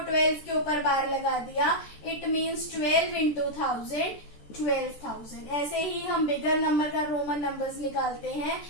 12 के ऊपर बार लगा दिया, इट मीन्स 12 इंटू 1000 12,000। ऐसे ही हम बिगर नंबर का रोमन नंबर्स निकालते हैं।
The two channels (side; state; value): right; late; 14 ms